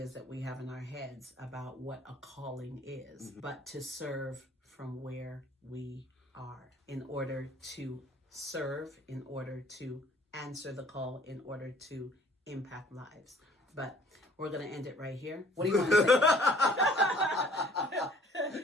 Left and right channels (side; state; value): both; normal; correlation 0.55